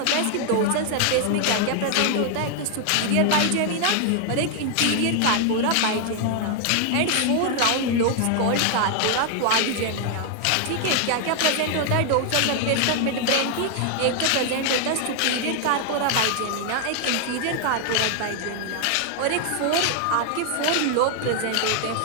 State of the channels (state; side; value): different; both; correlation 0.00